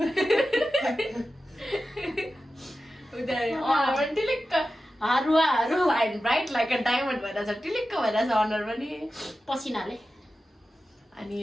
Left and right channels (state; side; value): normal; both; correlation 0.93